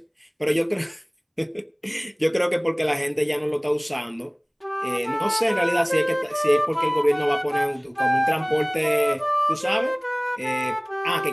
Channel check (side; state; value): both; identical; correlation 1.00